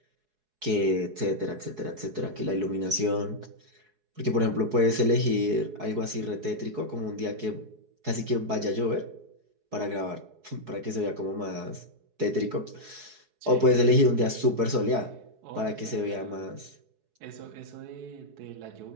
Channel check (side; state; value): left; late; 4.7 ms